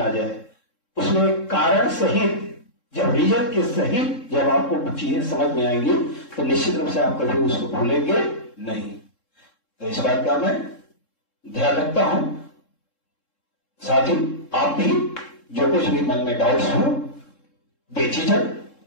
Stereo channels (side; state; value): right; late; 3.7 ms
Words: जाए, उसमें कारण सहित, जब रीजन के सहित जब आपको चीजें समझ में आएंगी तो निश्चित रूप से आप कभी उसको भूलेंगे नहीं। तो इस बात का मैं ध्यान रखता हूं। साथ ही आप भी जो कुछ भी मन में डाउट्स हो बेझिझक